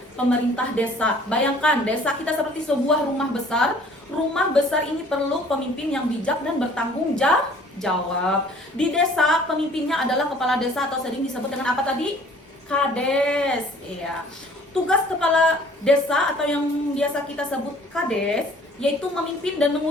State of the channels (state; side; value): normal; both; correlation 0.53